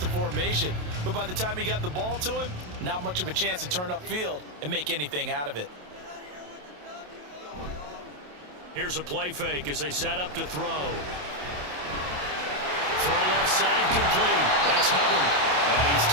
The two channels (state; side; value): late; left; 27 ms